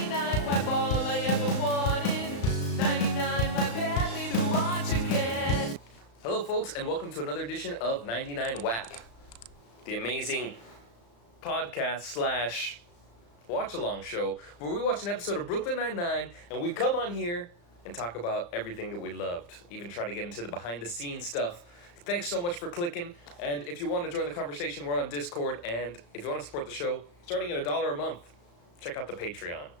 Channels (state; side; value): late; right; 35 ms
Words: wipe all I ever wanted. 99 wipe happy to watch again. Hello, folks, and welcome to another edition of 99 WAP, the amazing podcast slash watch-along show where we watch an episode of Brooklyn Nine-Nine and we come on here and talk about everything that we loved, even try to get into the behind-the-scenes stuff. Thanks so much for clicking, and if you want to join the conversation, we're on Discord, and if you want to support the show, starting at $1 a month, check out the Patreon.